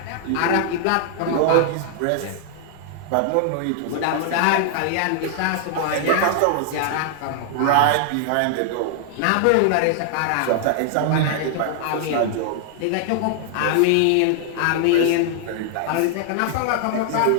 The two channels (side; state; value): both; different; correlation 0.00